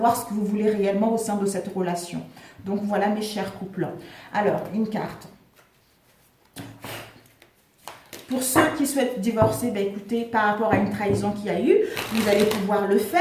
ce que vous voulez réellement au sein de cette relation. Donc, voilà mes chers couples. Alors, une carte. Pour ceux qui souhaitent divorcer, ben écoutez, par rapport à une trahison qu'il y a eu, vous allez pouvoir le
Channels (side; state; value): both; identical; correlation 1.00